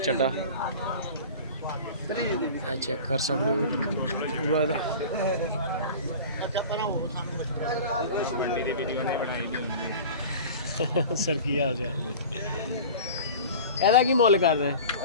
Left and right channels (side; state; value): both; inverted; correlation -0.37